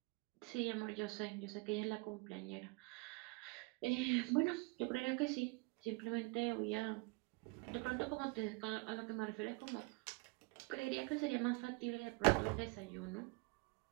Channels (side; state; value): left; quieter; 28.2 dB